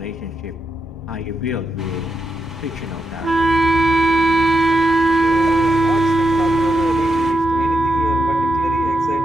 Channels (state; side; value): normal; both; correlation 0.84